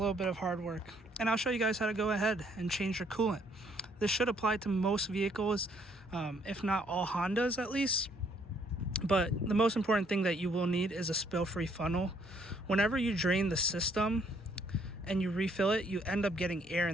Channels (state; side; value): normal; both; correlation 0.66